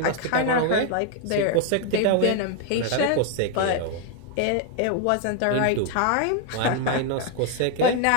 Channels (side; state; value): both; different; correlation 0.01